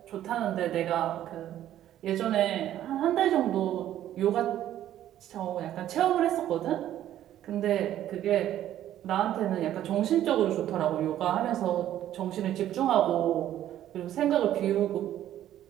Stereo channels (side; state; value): left; quieter; 12.1 dB